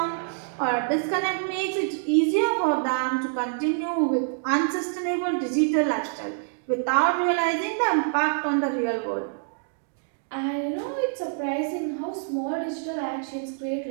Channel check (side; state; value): left; silent; digital silence